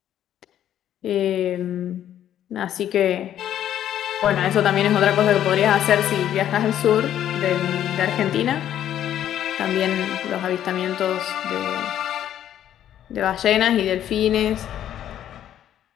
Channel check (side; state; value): right; quieter; 11.0 dB